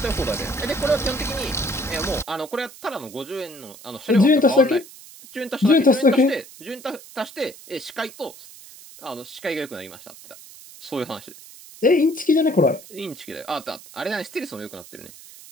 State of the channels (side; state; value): right; noise; hiss, 18 dB below the sound